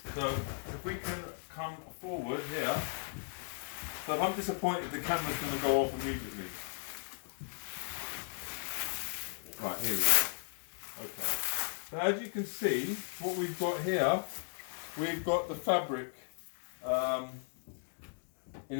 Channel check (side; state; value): right; silent; digital silence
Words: So if we can come forward here. So if I'm disappointed, the camera's going to go off immediately. Right, here we go. Okay. So as you can see, what we've got here, we've got the fabric in